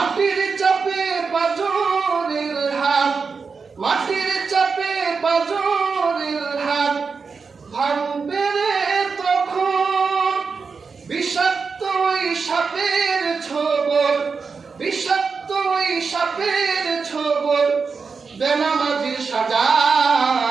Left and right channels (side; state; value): left; quieter; 5.1 dB